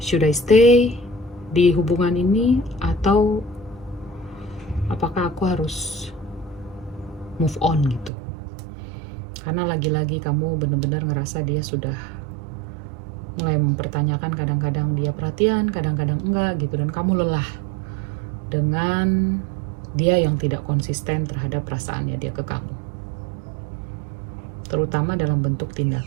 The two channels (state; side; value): drops out; left; at 8.1 s